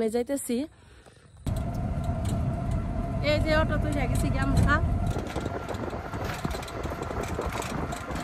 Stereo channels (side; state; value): both; identical; correlation 1.00